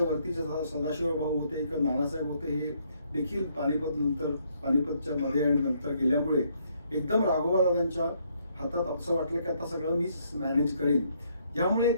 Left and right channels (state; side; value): inverted; both; correlation -0.71